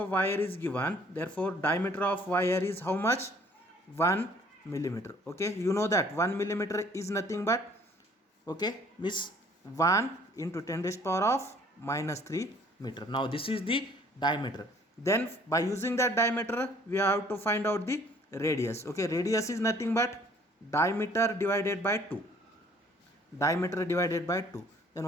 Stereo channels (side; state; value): both; normal; correlation 0.57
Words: wire is given. Therefore, diameter of wire is how much? 1 millimeter. Okay. You know that 1 millimeter is nothing but, okay, means 1 into 10 raised power of minus 3 meter. Now this is the diameter. Then by using that diameter we have to find out the radius. Okay, radius is nothing but diameter divided by 2. Diameter divided by 2. Then